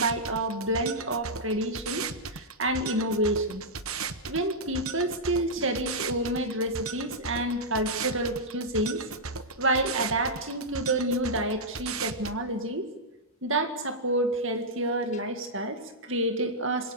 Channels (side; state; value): both; normal; correlation -0.08